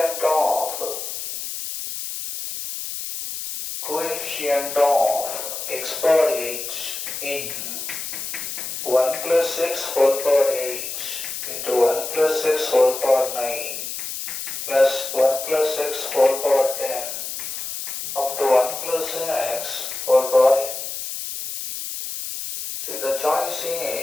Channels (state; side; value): noise; left; hiss, 6 dB below the sound